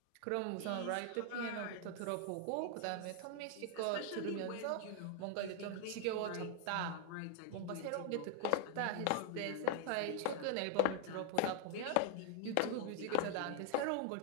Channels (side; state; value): both; different; correlation 0.01